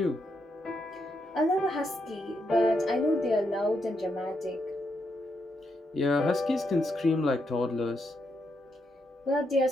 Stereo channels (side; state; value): both; normal; correlation 0.80